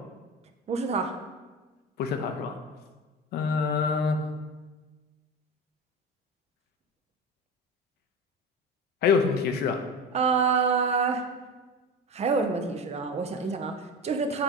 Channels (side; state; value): both; normal; correlation 0.26